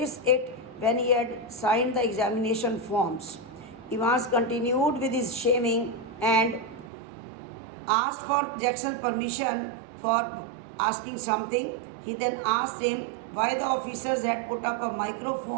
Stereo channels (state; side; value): drops out; left; at 6.9 s